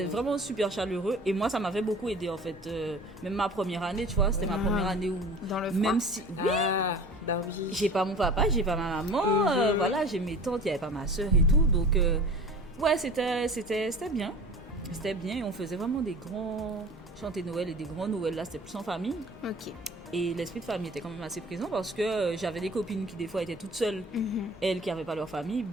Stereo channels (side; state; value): both; normal; correlation 0.42